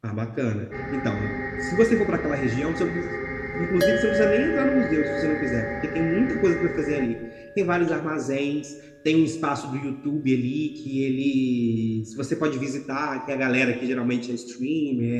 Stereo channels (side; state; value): both; identical; correlation 1.00